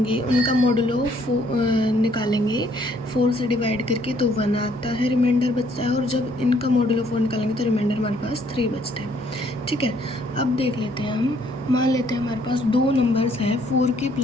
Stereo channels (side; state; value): both; normal; correlation 0.65